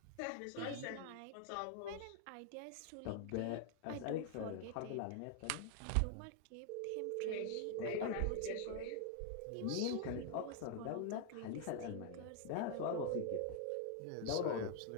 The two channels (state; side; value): different; both; correlation 0.00